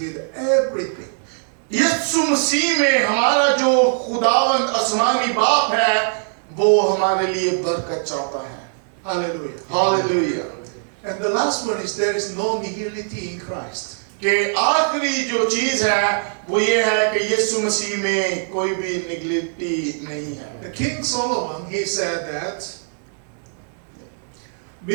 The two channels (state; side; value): silent; left; digital silence